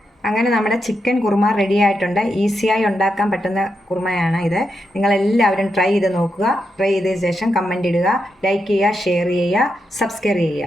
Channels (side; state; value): both; normal; correlation 0.85